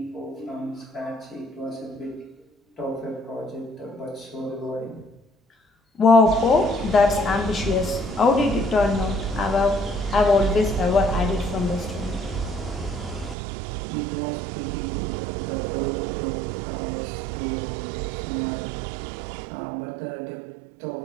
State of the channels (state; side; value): drops out; left; at 13.4 s